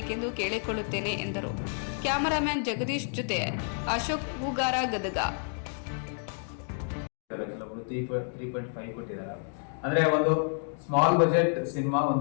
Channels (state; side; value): silent; right; 58 dB below the other